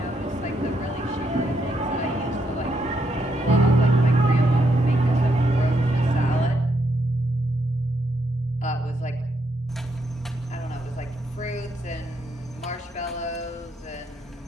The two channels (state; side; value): normal; both; correlation 0.78